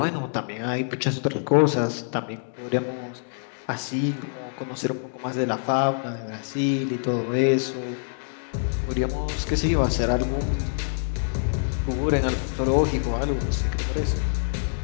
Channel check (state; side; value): silent; right; digital silence